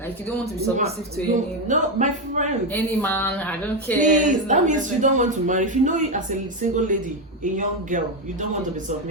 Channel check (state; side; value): normal; both; correlation 0.09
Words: Like you don't want to be submissive to No, my friend. any man. I don't care. Please, that means you don't want to marry. If you know it as a single lady, a young girl, you don't want to be